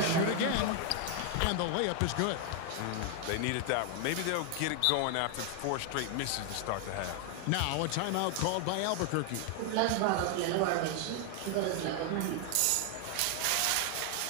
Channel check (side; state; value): both; different; correlation 0.00